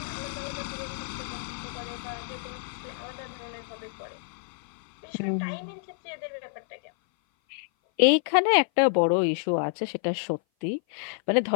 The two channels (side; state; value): right; silent; 56 dB below the other